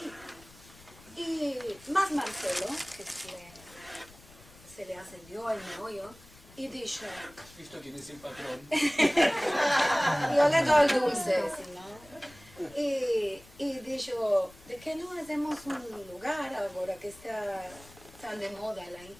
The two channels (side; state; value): left; noise; rumble, 23 dB below the sound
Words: Y más Marcelo, que se le ascendió el meollo, y dijo, ¿Has visto quién es el patrón? yo le doy el dulce, si no. Y dijo, ¿de qué no hacemos un lugar ahora que está tan de moda la